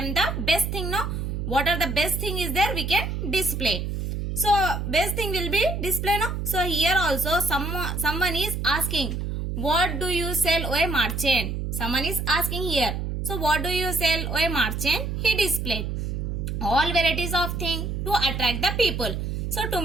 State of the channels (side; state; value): right; noise; hum, 3 dB below the sound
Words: the best thing. No, what are the best thing is there? We can display. So best thing will be display. No. So here also someone is asking, what do you sell, O merchant? Someone is asking here. So what do you sell, O merchant? He displayed all varieties of things to attract the people. So to